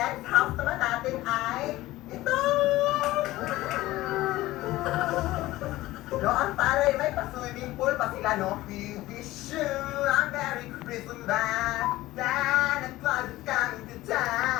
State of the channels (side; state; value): right; quieter; 17.3 dB